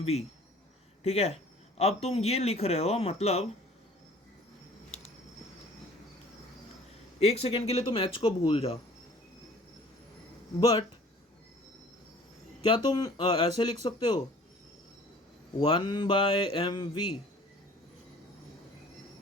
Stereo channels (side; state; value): both; normal; correlation 0.50